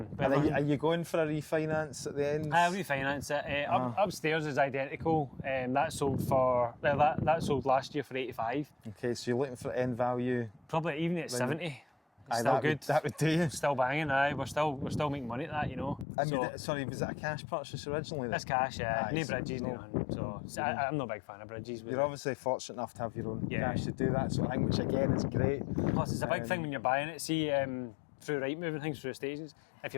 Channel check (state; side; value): drops out; right; at 16.1 s